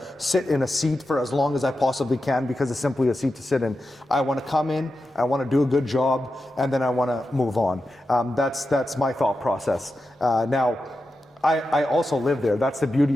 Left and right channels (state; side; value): normal; both; correlation 0.90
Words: sit in a seat for as long as I possibly can because it's simply a seat to sit in. I want to come in, I want to do a good job, and then I want to move on. That's my thought process. Now, I also live there. That's the